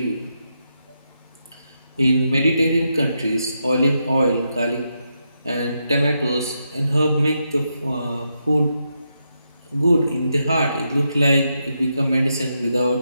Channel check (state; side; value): inverted; both; correlation -0.83